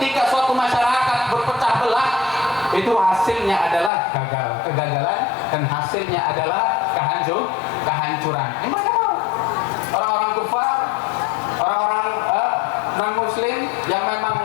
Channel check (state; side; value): drops out; right; at 3.9 s